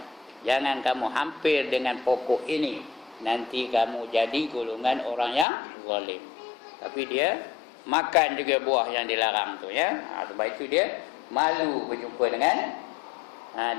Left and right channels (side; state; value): right; drops out; at 5.5 s